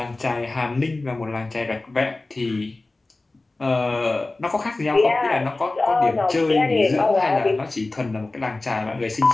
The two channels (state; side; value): quieter; right; 3.1 dB